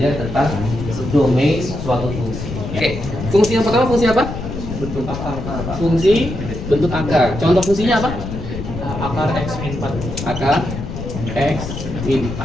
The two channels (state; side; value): noise; left; rumble, 7 dB below the sound